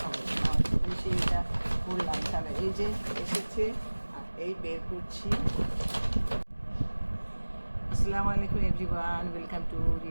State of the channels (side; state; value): both; inverted; correlation -1.00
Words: বলি। নামাজ পড়ে এসে এটা বললাম, তাহলে এই যে এসেছে আর এই বের করছি। আসসালামু আলাইকুম everyone, welcome to